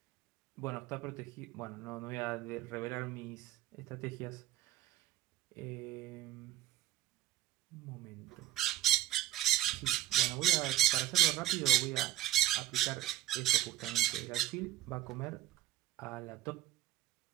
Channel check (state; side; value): quieter; left; 14.4 dB